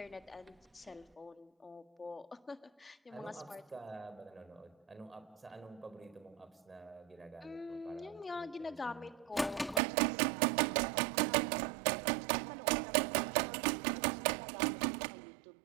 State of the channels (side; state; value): left; drops out; at 9.8 s